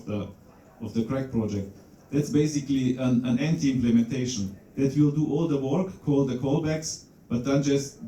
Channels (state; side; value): identical; both; correlation 1.00